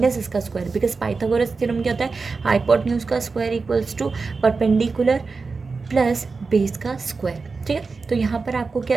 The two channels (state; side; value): quieter; left; 4.4 dB